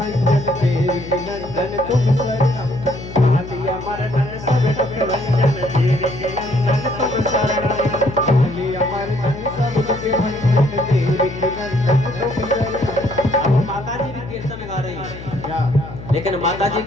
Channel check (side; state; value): left; noise; hum, 12 dB below the sound